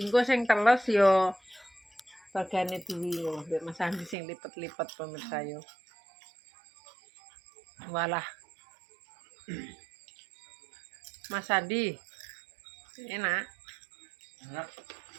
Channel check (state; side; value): drops out; left; at 4.2 s